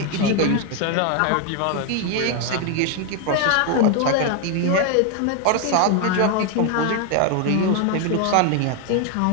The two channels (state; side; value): different; both; correlation 0.01